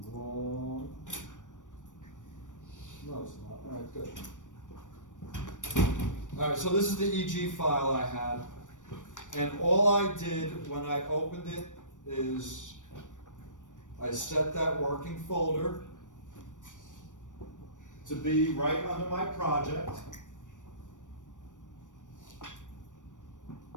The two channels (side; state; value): right; late; 0.87 ms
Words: wrong. No, it's not. All right, good. All right, so this is the EG file I had, and all I did when I opened it is I set that working folder to be right under my project.